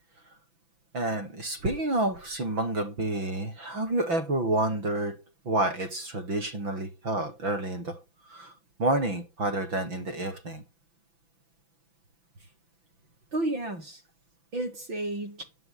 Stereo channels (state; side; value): late; left; 6.0 ms